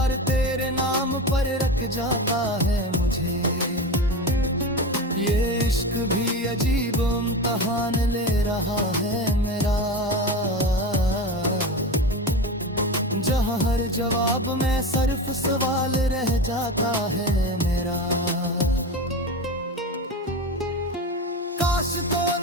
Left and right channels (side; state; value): both; normal; correlation 0.25